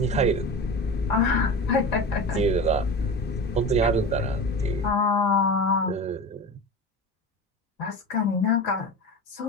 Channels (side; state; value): both; normal; correlation 0.30